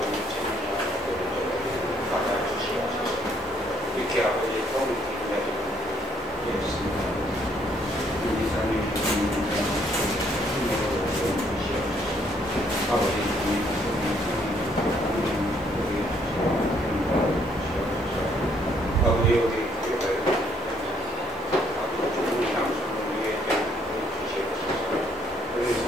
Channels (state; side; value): normal; both; correlation 0.67